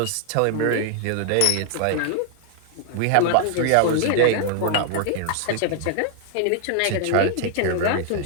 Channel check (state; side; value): different; both; correlation 0.00